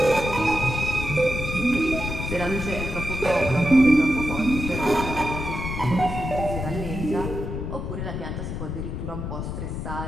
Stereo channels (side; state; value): left; noise; rumble, 5 dB below the sound